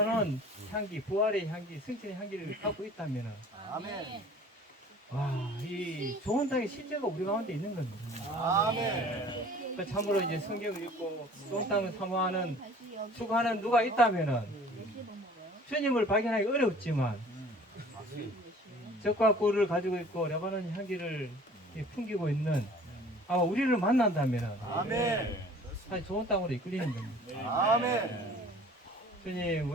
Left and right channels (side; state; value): both; normal; correlation 0.48